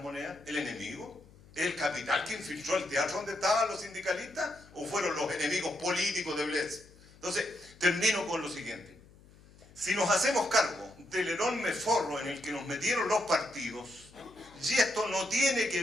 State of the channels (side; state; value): left; noise; hum, 24 dB below the sound